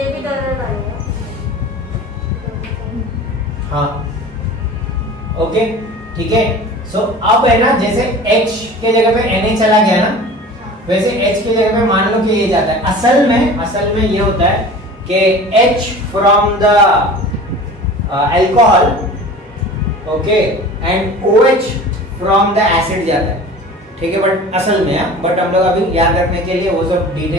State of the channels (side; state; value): both; normal; correlation 0.39